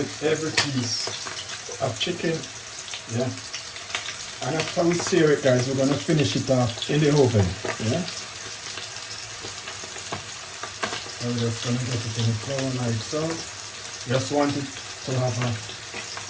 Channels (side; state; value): both; identical; correlation 1.00